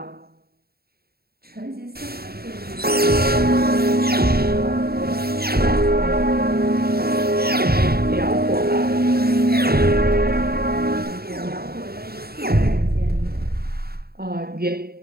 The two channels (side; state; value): left; late; 0.45 ms